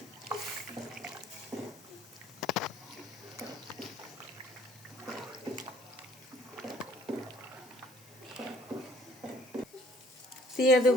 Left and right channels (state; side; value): noise; left; hiss, 23 dB below the sound